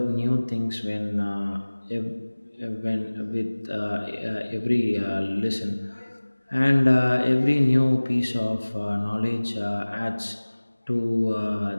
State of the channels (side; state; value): both; inverted; correlation -1.00